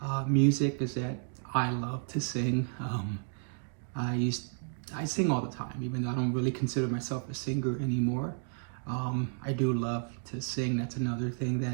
music is that I love to sing. I sing all the time, even though I don't really consider myself a singer anymore. I do love to sing. That's another thing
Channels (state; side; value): silent; left; 56 dB below the other